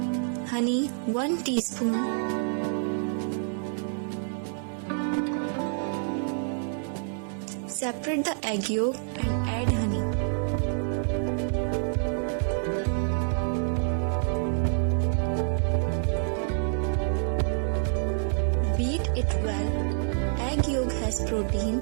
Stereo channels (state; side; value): silent; left; 60 dB below the other